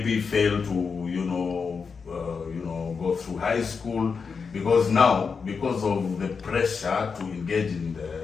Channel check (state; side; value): quieter; right; 5.5 dB